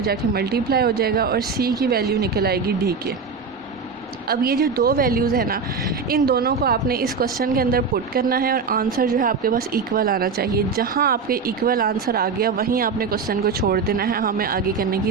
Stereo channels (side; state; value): left; quieter; 5.2 dB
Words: मल्टीप्लाई हो जाएगा, और c की वैल्यू निकल आएगी d के। अब ये जो दो वैल्यूज़ है ना, इन दोनों को आपने इस क्वेश्चन के अंदर पुट करना है, और आंसर जो है आपके पास इक्वल आना चाहिए। जहाँ आपके इक्वल आंसर आ गया वहीं आपने क्वेश्चन को छोड़ देना है, हमें आगे करने